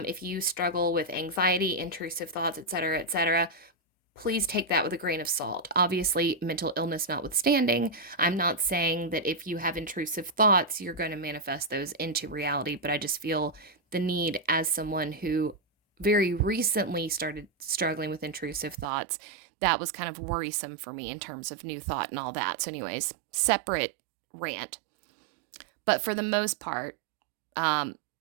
you struggle with anxiety, intrusive thoughts, etc., please take that with a grain of salt. Obviously, mental illness notwithstanding, I'm not saying that if you have intrusive thoughts, you're going to manifest those into reality, but I just feel the need, as someone who very recently started struggling with intrusive thoughts, that was kind of worrisome for me in terms of new thought and all that. So anyways, separate rant. But for the most part,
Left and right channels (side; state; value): left; drops out; at 18.9 s